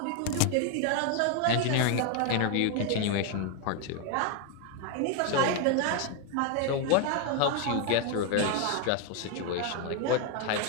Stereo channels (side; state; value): both; different; correlation 0.00